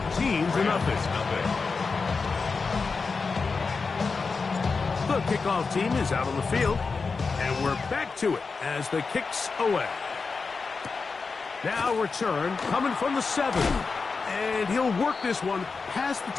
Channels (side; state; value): right; quieter; 4.6 dB